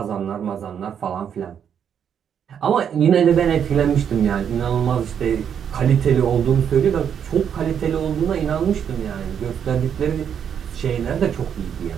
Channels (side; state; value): left; quieter; 8.2 dB